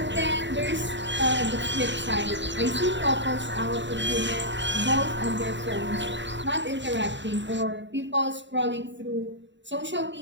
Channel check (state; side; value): late; left; 0.53 ms